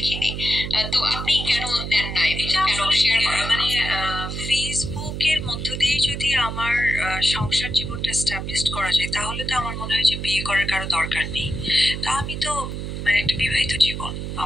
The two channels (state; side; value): noise; right; hum, 5 dB below the sound